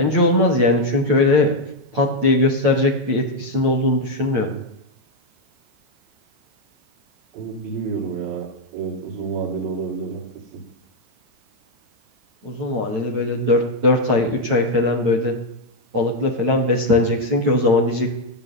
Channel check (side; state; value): left; late; 8.9 ms